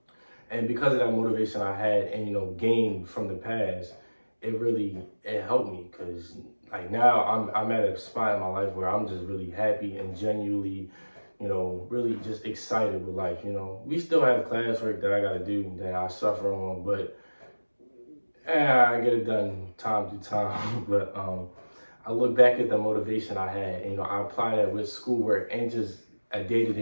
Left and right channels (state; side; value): inverted; both; correlation -1.00